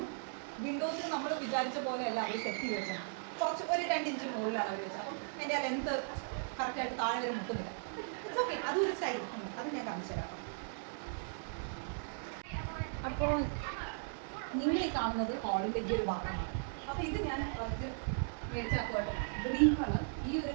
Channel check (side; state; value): left; silent; digital silence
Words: വിൻഡോസിൽ നമ്മൾ വിചാരിച്ച പോലെയല്ല അവർ സെറ്റ് ചെയ്ത് വെച്ചത്. കുറച്ച് ഒരു 2 ഇഞ്ച് മുകളിലാണ് അവർ വെച്ചത്. അപ്പം എൻ്റെ ആ ലെന്ത് കറക്റ്റായിട്ട് താഴെ വരെ മുട്ടുന്നില്ല. ഇറ്റ്സ് ഓക്കെ, അതൊരു സ്റ്റൈൽ. അത് ഞാൻ കാണിച്ചു തരാം. അപ്പോൾ നിങ്ങൾ ഈ കാണുന്നത് ഹാളിലേക്ക് ഒരു ഭാഗമാണ്. അപ്പോൾ ഇത് ഞാൻ ഫസ്റ്റ് മേടിച്ചാക്കുവാണ് ഗ്രീൻ കളർ. ഈ ഒരു